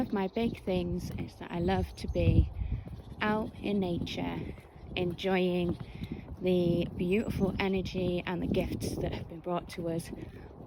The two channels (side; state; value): both; identical; correlation 1.00